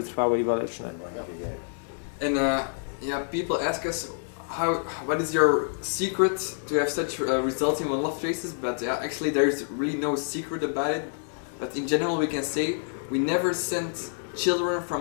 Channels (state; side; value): silent; right; digital silence